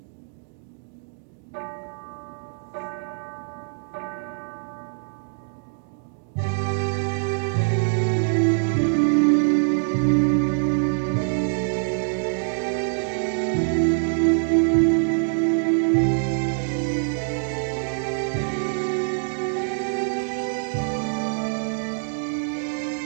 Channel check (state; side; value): silent; left; digital silence